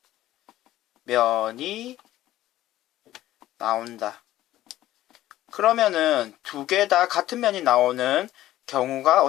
면이 나온다. 그러면은 2개 다 같은 면이 나오는 경우가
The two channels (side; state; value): right; quieter; 14.5 dB